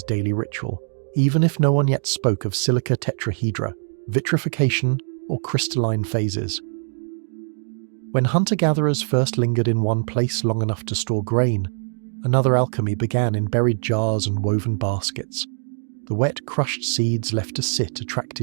daily ritual, even if no one yet spoke of silica tetrahedra, vitrification, or crystalline phases. When hunter-gatherers first lingered in one place long enough to store grain, another alchemy began in buried jars and woven baskets. The wet, crushed seeds left to sit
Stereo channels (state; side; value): silent; left; digital silence